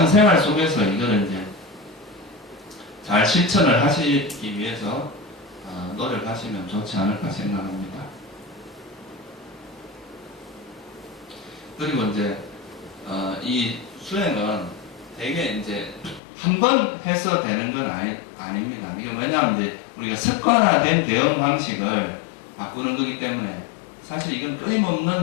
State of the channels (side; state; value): right; drops out; at 16.2 s